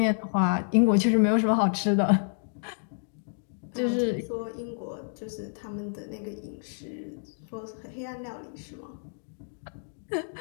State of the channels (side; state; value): right; silent; digital silence